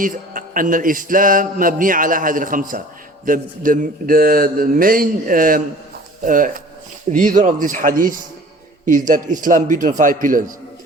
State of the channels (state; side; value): normal; both; correlation 0.46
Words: أن الإسلام مبني على هذه الخمسة. The main reason of this hadith is that Islam built on 5 pillars.